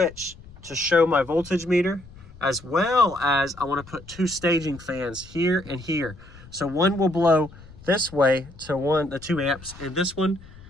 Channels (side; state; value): left; noise; rumble, 20 dB below the sound